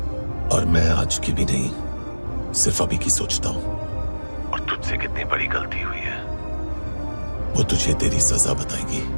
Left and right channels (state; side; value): inverted; both; correlation -1.00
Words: और मैं आज की भी नहीं, सिर्फ अभी की सोचता हूं। और तुझसे कितनी बड़ी गलती हुई है वो तुझे तेरी सजा बताएगी।